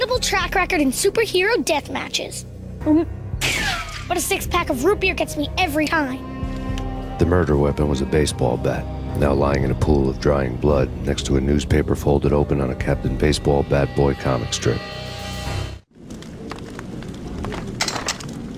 track record in superhero death matches. But a 6-pack of root beer gets me every time. The murder weapon was a baseball bat, now lying in a pool of drying blood next to a newspaper folded open on a Captain Baseball Bat Boy comic strip.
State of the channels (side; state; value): both; identical; correlation 1.00